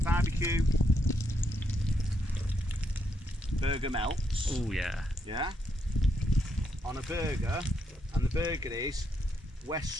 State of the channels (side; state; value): both; normal; correlation 0.79